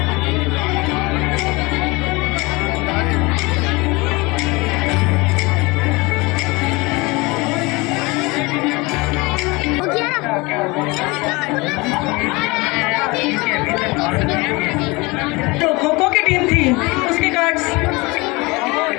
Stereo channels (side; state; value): right; quieter; 24.7 dB